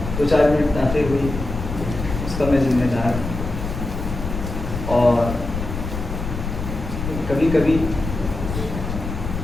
چار منٹ تاخیر ہوئی اس کا میں ذمہ دار. اور کبھی کبھی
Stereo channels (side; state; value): left; noise; rumble, 6 dB below the sound